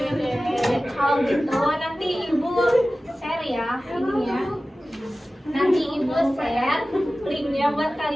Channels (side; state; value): both; normal; correlation 0.96